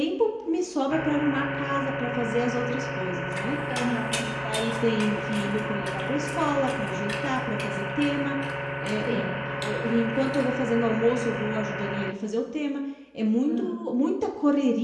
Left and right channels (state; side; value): identical; both; correlation 1.00